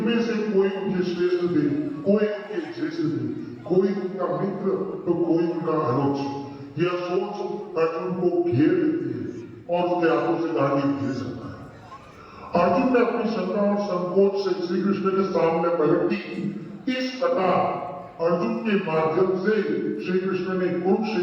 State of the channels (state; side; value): identical; both; correlation 1.00